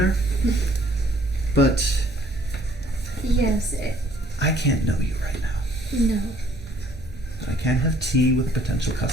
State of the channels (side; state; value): both; normal; correlation 0.61